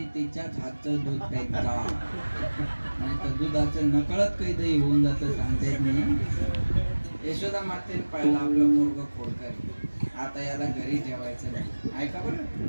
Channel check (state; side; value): inverted; both; correlation -1.00